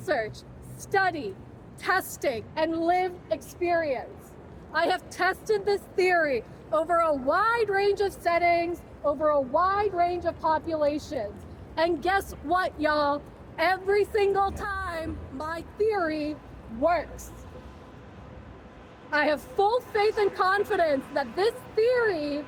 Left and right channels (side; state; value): both; identical; correlation 1.00